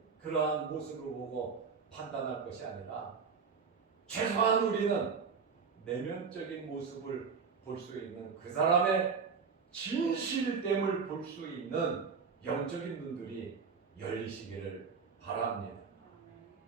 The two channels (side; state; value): left; quieter; 5.6 dB